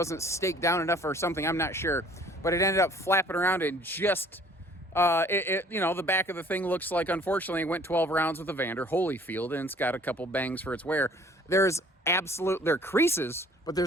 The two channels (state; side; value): normal; both; correlation 0.55